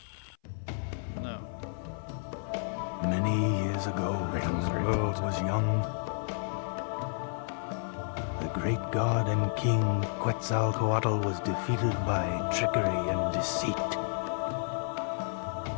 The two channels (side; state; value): right; silent; 57 dB below the other